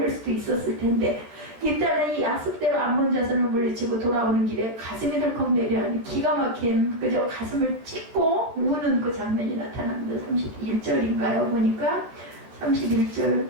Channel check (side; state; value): left; late; 13 ms